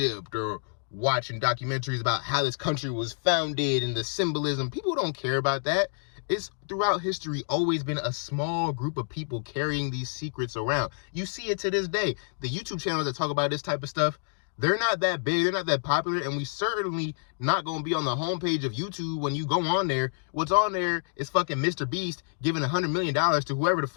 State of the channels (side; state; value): right; silent; digital silence